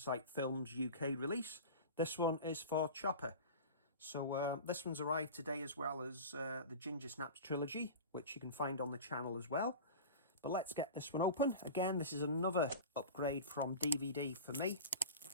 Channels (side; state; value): both; inverted; correlation -0.32